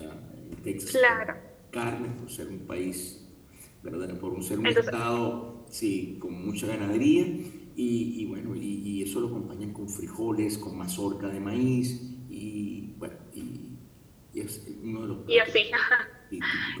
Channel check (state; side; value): identical; both; correlation 1.00